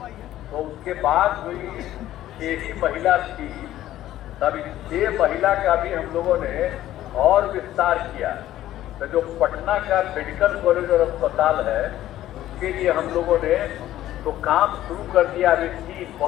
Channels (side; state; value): right; quieter; 13.6 dB